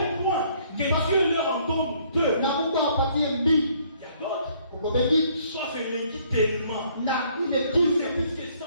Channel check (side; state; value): both; inverted; correlation -0.63